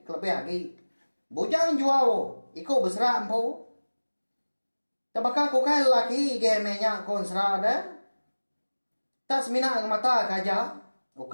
kelebih lagi. Bujang jual iko besara empu. Tabaka ko kai laki gemenya kon sera dah. Tas mina ke mata kaja.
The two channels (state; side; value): inverted; both; correlation -1.00